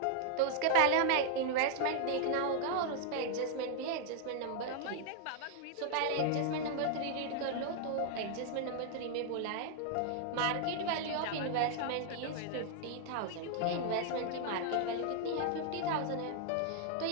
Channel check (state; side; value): different; both; correlation -0.01